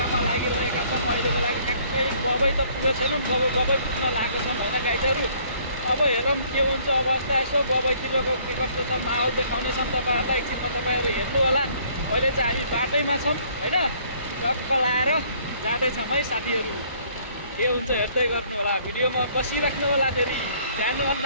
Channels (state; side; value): inverted; both; correlation -0.60